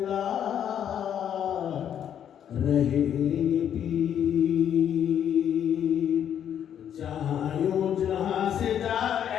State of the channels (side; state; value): right; quieter; 9.4 dB